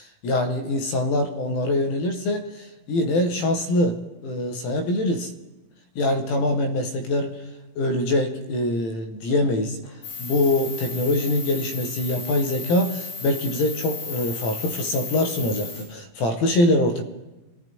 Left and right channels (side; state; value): right; late; 18 ms